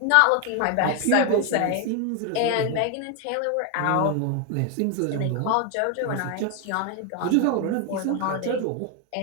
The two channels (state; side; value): different; both; correlation 0.01